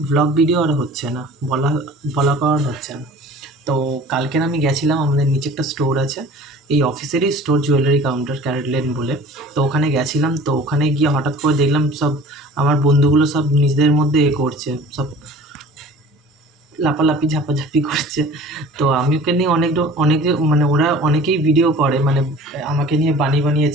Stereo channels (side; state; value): both; normal; correlation 0.44